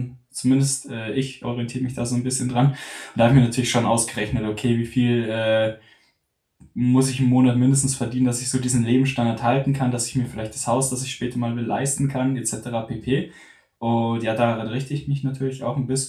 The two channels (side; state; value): both; identical; correlation 1.00